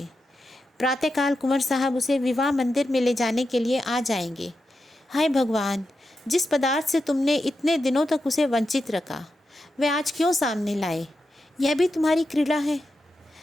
प्रातःकाल कुंवर साहब उसे विवाह मंदिर में ले जाने के लिए आ जाएंगे। हाय भगवान, जिस पदार्थ से तुमने इतने दिनों तक उसे वंचित रखा, वह आज क्यों सामने लाए? यह भी तुम्हारी क्रीड़ा है।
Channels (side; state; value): both; normal; correlation 0.88